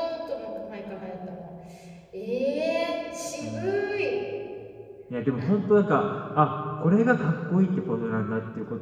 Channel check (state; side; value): identical; both; correlation 1.00